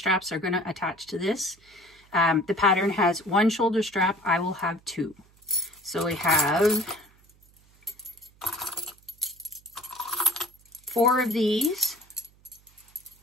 are going to attach to this. The pattern has one shoulder strap. I will have two. So we have 4 of these.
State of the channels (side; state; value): right; noise; hum, 30 dB below the sound